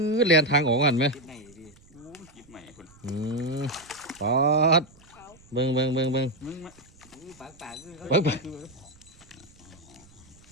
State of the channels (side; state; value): right; noise; rumble, 26 dB below the sound